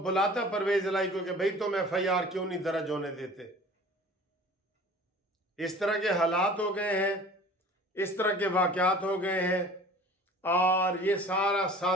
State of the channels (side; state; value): both; normal; correlation 0.45